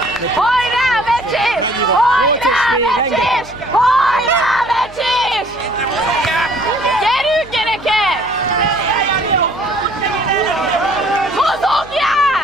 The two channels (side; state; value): left; noise; hum, 20 dB below the sound